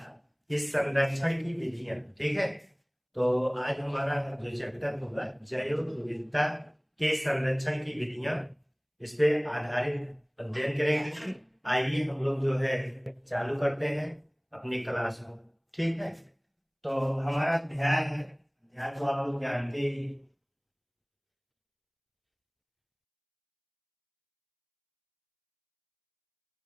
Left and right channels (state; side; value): identical; both; correlation 1.00